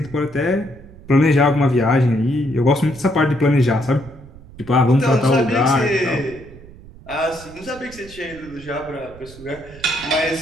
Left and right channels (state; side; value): noise; right; rumble, 19 dB below the sound